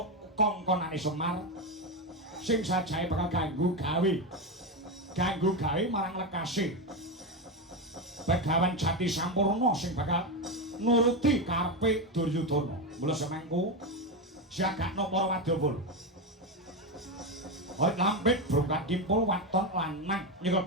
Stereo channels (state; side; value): normal; both; correlation 0.12